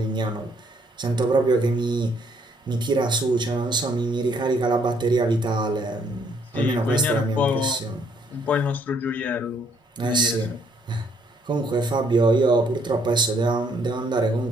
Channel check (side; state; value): both; normal; correlation 0.67